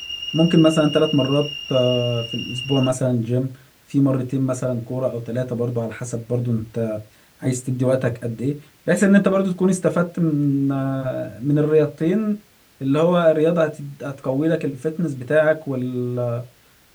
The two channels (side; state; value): both; identical; correlation 1.00